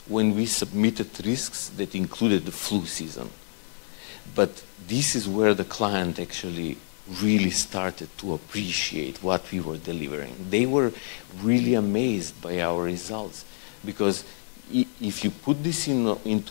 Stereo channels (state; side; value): silent; right; 57 dB below the other